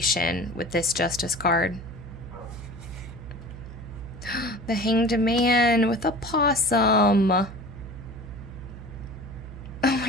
with this Justice card. The Hanged Man with a possum. Oh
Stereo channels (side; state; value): right; noise; hum, 13 dB below the sound